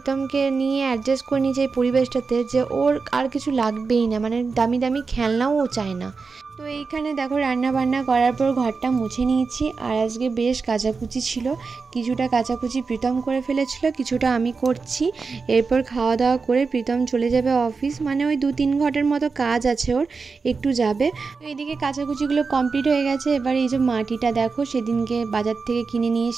নিয়ে অ্যাডজাস্ট করে নিয়েছে এই পরিবেশটাতে যে ওর আর কিছু লাগবেই না, মানে দামি দামি খেলনাও ও চায় না। তো এইখানে দেখো রান্না বান্না করার পর ঘরটা মুছে নিয়েছি। আর আজকে বেশ কাচাকুচি ছিল, কিছুটা কাচাকুচি প্রীতম করে ফেলেছিল, কিছুটা আমি করছি। এরপর খাওয়া দাওয়া করে প্রীতম চলে যাবে অফিস, মানে ওই 2-3 ঘন্টার মতো কাজ আছে ওর, একটু যাবে। তো এদিকে কাচাকুচিগুলো কমপ্লিট হয়ে গেছে। এবার এই যে মাটিটা দেখো সেদিনকে বাজার থেকে কিনে নিয়ে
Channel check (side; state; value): left; quieter; 4.7 dB